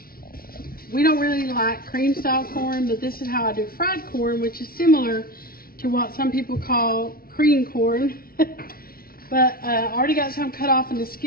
We don't really like cream style corn, but this is how I do fried corn, which is similar to what some people call cream corn. But I already got some cut off in the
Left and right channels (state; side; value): late; right; 0.43 ms